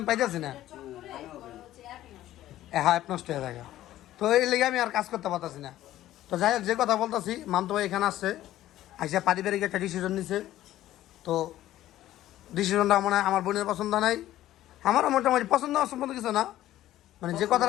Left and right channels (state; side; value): quieter; right; 13.9 dB